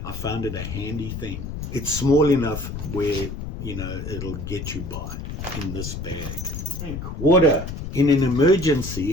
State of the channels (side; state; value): left; noise; rumble, 7 dB below the sound